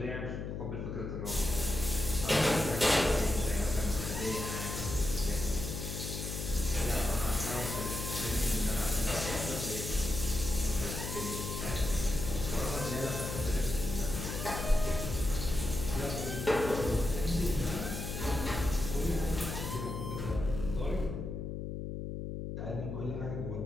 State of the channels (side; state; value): left; noise; hum, 5 dB below the sound